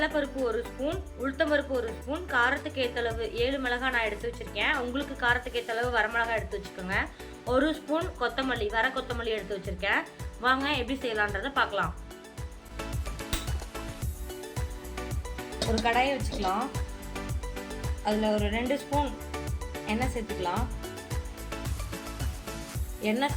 1 ஸ்பூன், உளுத்தம்பருப்பு 1 ஸ்பூன், காரத்துக்கு ஏற்றளவு 7 மிளகாய் நான் எடுத்து வச்சுருக்கேன். உங்களுக்கு காரத்துக்கு ஏற்றளவு வரமிளகாய் எடுத்து வச்சுக்கோங்க. 1 ஸ்பூன் கொத்தமல்லி, வர கொத்தமல்லி எடுத்து வச்சுருக்கேன். வாங்க எப்படி செய்யலான்றதை பார்க்கலாம். ஒரு கடாயை வச்சுக்கலாம். அதில் ஒரு 2 ஸ்பூன் எண்ணெய் சேர்த்துக்கலாம். எண்ணெய்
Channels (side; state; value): both; identical; correlation 1.00